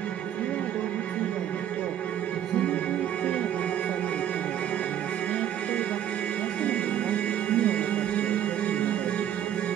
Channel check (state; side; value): quieter; left; 10.4 dB